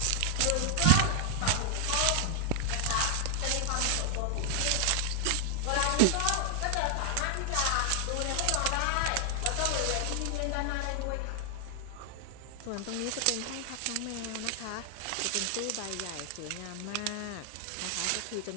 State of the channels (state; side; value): different; both; correlation 0.00